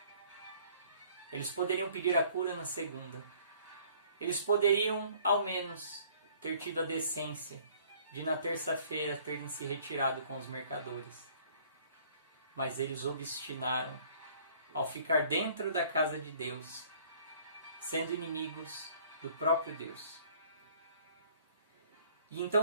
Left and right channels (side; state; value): both; inverted; correlation -0.56